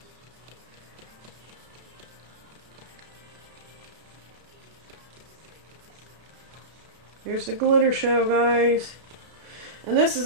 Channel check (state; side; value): late; left; 32 ms